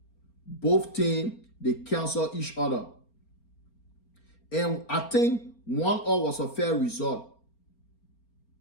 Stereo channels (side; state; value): right; late; 4.4 ms